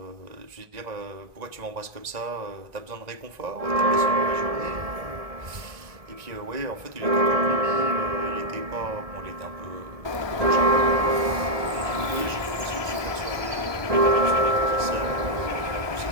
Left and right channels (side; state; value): left; late; 1.2 ms